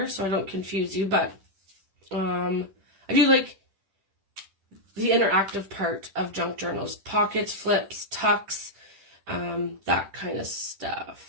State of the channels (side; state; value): left; late; 10 ms